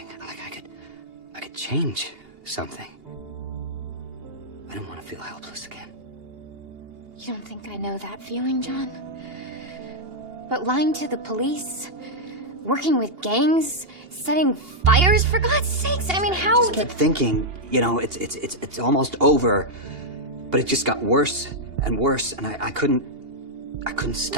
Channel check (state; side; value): late; left; 2.8 ms